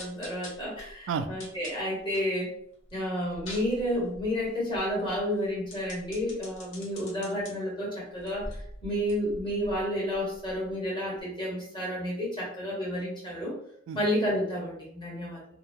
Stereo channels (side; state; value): both; normal; correlation 0.49